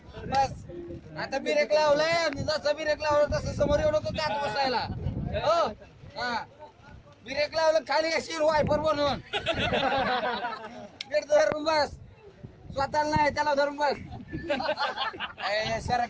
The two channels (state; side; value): identical; both; correlation 1.00